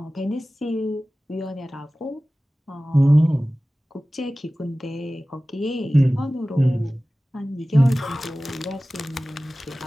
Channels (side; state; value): both; normal; correlation 0.97